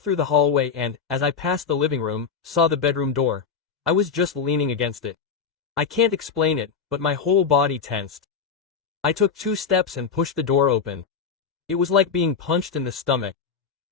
through the hallway and, as I passed the living room, saw the bedroom door. I was just leaning against it. I can't explain it, but my whole body tensed. I took 2 steps and pushed the door open. It was like being punched in the stomach.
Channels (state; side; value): quieter; right; 6.1 dB